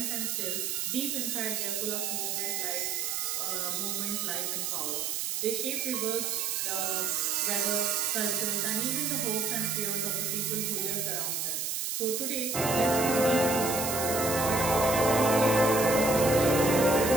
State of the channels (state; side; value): noise; right; hiss, 2 dB below the sound